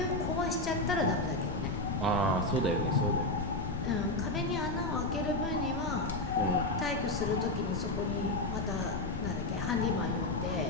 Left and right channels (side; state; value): left; noise; rumble, 6 dB below the sound